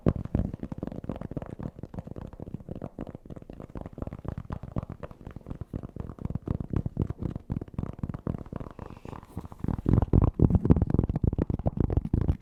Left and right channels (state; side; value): identical; both; correlation 1.00